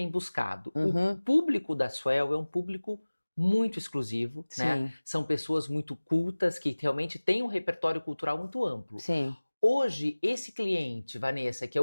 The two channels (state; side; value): inverted; both; correlation -1.00